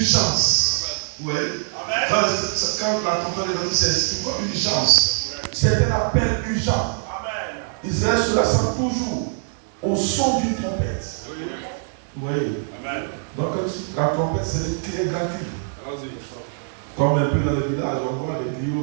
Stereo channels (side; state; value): left; silent; 61 dB below the other